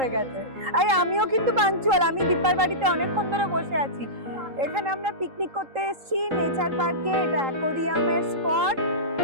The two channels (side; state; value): left; late; 3.8 ms